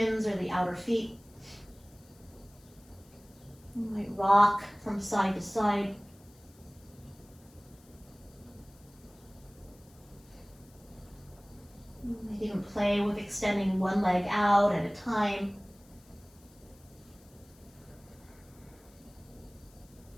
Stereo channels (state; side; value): noise; left; hiss, 27 dB below the sound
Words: or the outer feet. You might rock from side to side. You might even play with extending one leg out at a time.